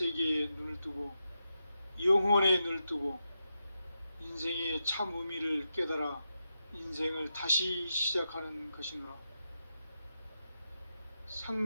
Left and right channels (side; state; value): both; inverted; correlation -0.87